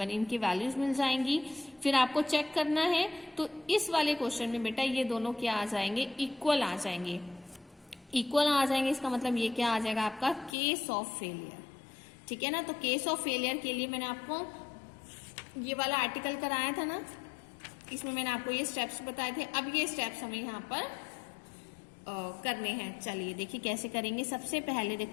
इनकी वैल्यूज मिल जाएंगी। फिर आपको चेक करना है, तो इस वाले क्वेश्चन में बेटा ये दोनों क्या आ जाएंगे, इक्वल आ जाएंगे। इक्वल आ जाएंगे इसका मतलब ये क्या आ जाएगा आपका, केस ऑफ फेलियर। ठीक है ना, तो केस ऑफ फेलियर के लिए मैंने आपको ये वाला आर्टिकल कराया था ना, इसमें मैंने आपको ये स्टेप्स बताए थे। अब ये स्टेप्स हमें यहाँ पर करने हैं। चलिए देखिए कैसे करेंगे। सबसे पहले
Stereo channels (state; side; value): drops out; right; at 10.5 s